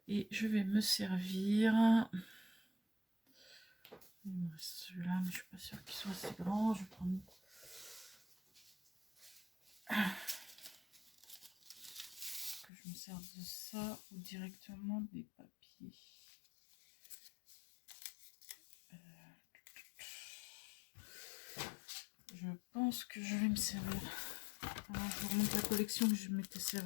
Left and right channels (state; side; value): drops out; right; at 12.7 s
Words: Et je vais me servir... Celui-là, mais je suis pas sûre qu'il soit assez grand. Je vais prendre... Que je me sers de ça ou directement des papiers. Je pense que je vais me servir. Alors, je vous remonte la collection que je m'étais